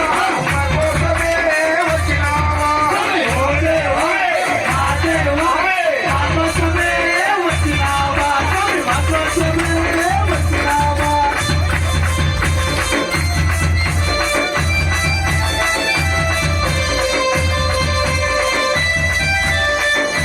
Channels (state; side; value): identical; both; correlation 1.00